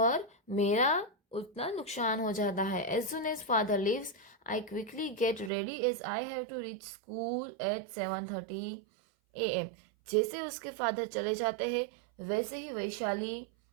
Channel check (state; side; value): drops out; left; at 5.5 s